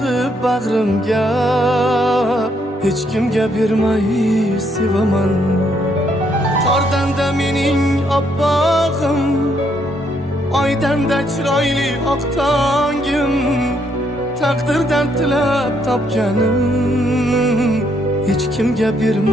bag'rimga, hech kimga bermay sevaman. Qordan-da mening oppog'im, oydan-da chiroyli oq tongim, taqdirdan tilab topganim, hech kimga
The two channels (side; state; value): both; normal; correlation 0.73